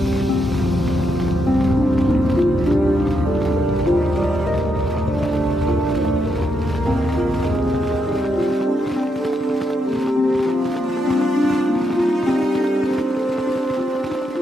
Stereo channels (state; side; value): normal; both; correlation 0.81